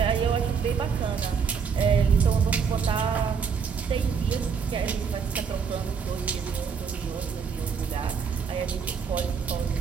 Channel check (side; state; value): left; quieter; 6.2 dB